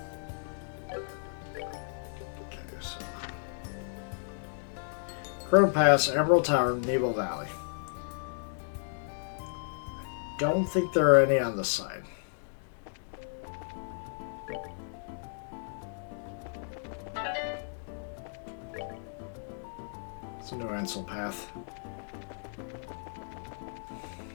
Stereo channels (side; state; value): right; silent; digital silence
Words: Okay, so Crow Pass, Emerald Tower, Nebo Valley. Don't think there are any on this side. It's a new Ansel path.